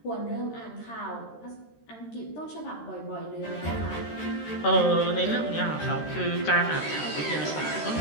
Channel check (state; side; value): late; right; 13 ms